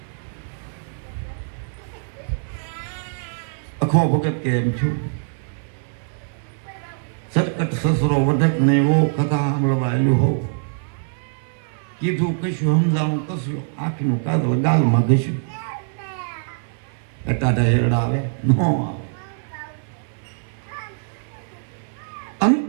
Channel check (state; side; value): silent; left; 63 dB below the other